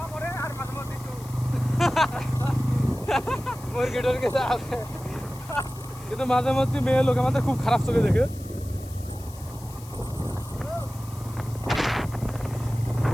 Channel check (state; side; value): noise; left; hiss, 19 dB below the sound